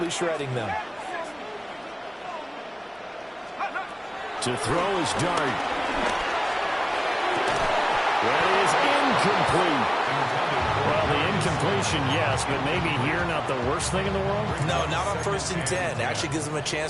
shredding them. To throw is Dart. That is incomplete. Well, the incompletion, yes, but maybe here not the worst thing in the world? No, not on 1st and 10. Actually gives them a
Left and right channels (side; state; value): both; identical; correlation 1.00